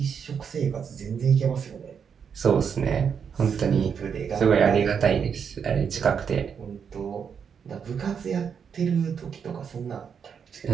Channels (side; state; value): left; quieter; 7.0 dB